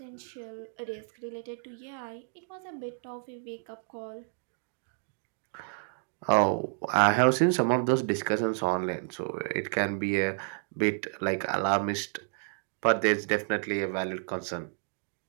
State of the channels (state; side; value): silent; left; digital silence